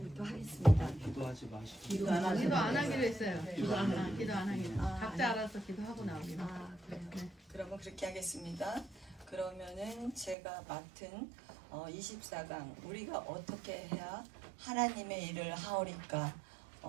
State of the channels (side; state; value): left; drops out; at 10.4 s